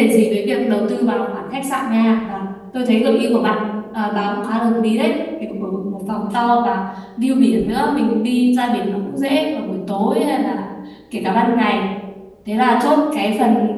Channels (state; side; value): identical; both; correlation 1.00